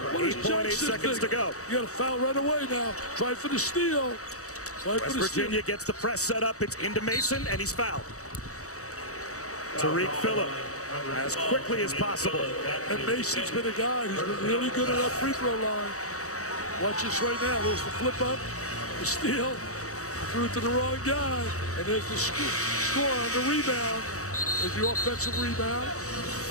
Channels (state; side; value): late; right; 0.65 ms